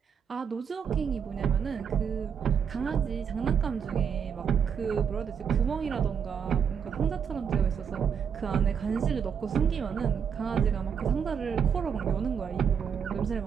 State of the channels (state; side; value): quieter; left; 7.2 dB